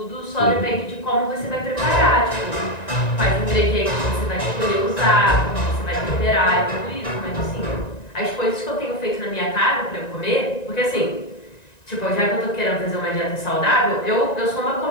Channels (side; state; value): right; late; 1.9 ms